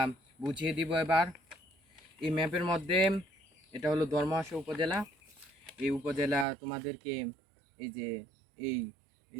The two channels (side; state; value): left; drops out; at 6.5 s